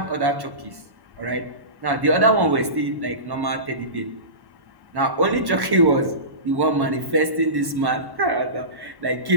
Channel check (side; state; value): left; late; 1.1 ms